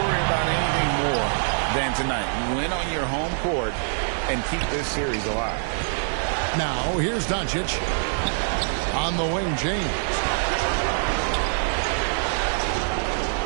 about anything more than tonight. Win on your home court and keep this series alive. Now, here's Doncic. On the wing, James.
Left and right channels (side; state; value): left; silent; digital silence